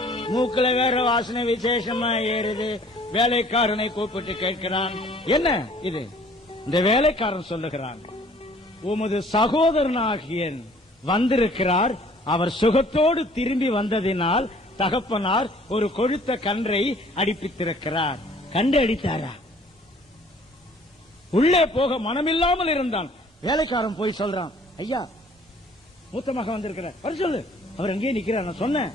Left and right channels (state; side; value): normal; both; correlation 0.55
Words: மூக்குல வேற வாசனை விசேஷமா ஏறுது. வேலைக்காரனை கூப்பிட்டு கேட்கிறான், என்ன இது? இந்த வேலைக்காரன் சொல்லுகிறான், உமது சகோதரனாகிய வந்திருக்கிறார், அவர் சுகத்தோடு திரும்பி வந்ததினால் தகப்பனார் ஒரு கொழுத்த கன்றை அடிப்பித்திருக்கிறார். கண்டு அடித்தாரா? உள்ளே போக மனமில்லாமல் இருந்தான். வேலைக்காரன் போய் சொல்றான், ஐயா மூத்த மகன் வந்திருக்கிறார், வர சொல்லு. அவர் எங்கே நிக்கிறார். நான் சொன்னேன்,